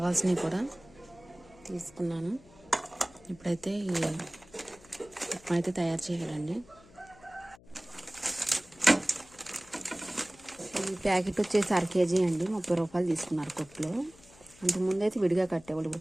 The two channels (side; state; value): left; noise; hum, 25 dB below the sound